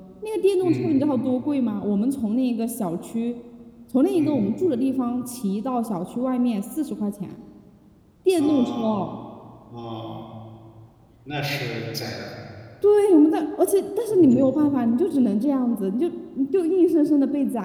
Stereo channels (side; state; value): both; identical; correlation 1.00